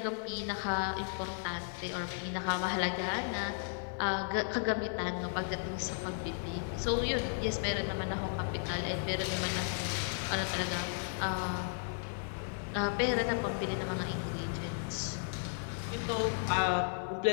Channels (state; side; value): silent; right; 55 dB below the other